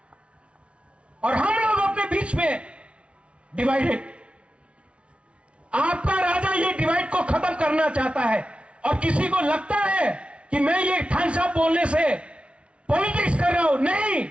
और हम लोग अपने बीच में डिवाइडेड। आपका राजा ये डिवाइड को खत्म करना चाहता है, और किसी को लगता है कि मैं ये थानसा बोलने से पॉलिटिक्स कर रहा हूं। नहीं,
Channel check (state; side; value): late; left; 0.060 ms